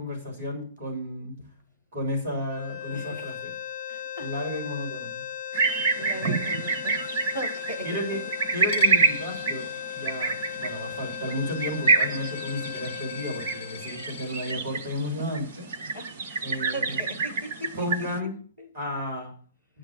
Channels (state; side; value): inverted; both; correlation -0.49